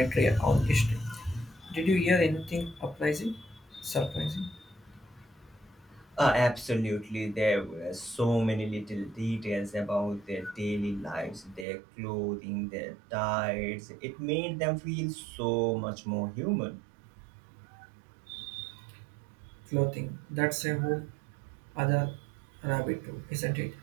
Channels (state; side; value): drops out; left; at 11.7 s